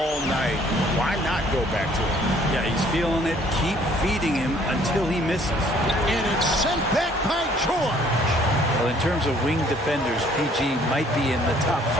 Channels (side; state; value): both; normal; correlation 0.59